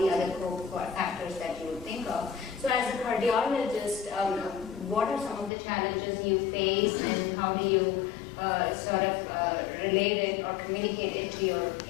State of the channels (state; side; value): drops out; right; at 5.5 s